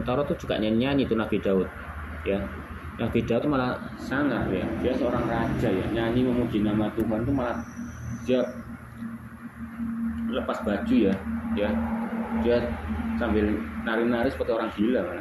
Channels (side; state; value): both; identical; correlation 1.00